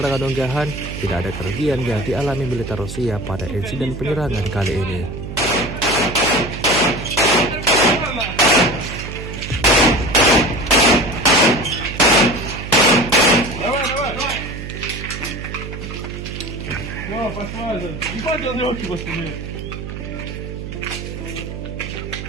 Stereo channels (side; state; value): right; noise; hum, 8 dB below the sound